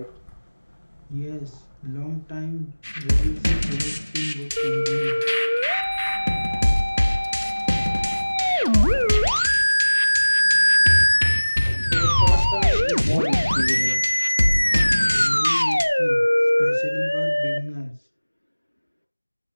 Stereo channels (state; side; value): inverted; both; correlation -1.00